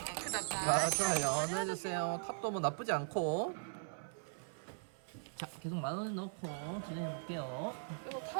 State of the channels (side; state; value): left; silent; 51 dB below the other